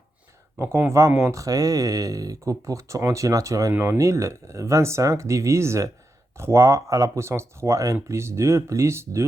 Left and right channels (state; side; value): normal; both; correlation 0.87